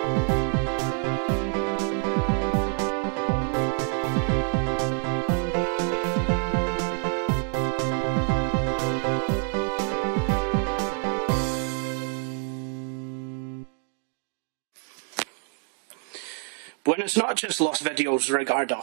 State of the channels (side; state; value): left; quieter; 40.0 dB